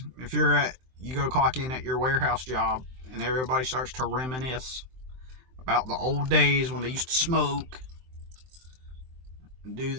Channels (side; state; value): left; late; 23 ms